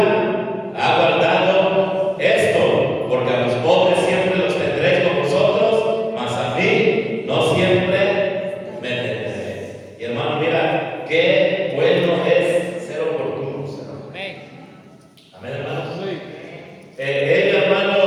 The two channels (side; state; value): both; identical; correlation 1.00